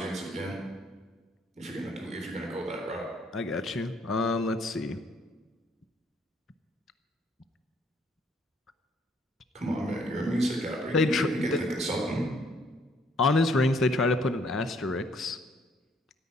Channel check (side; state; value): both; normal; correlation 0.65